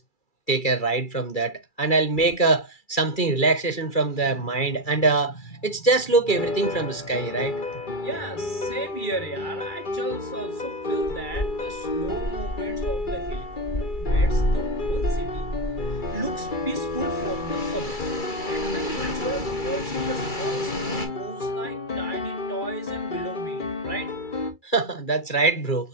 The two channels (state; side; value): late; right; 2.3 ms